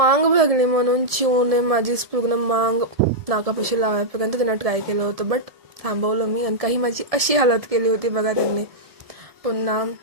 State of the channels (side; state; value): left; late; 1.7 ms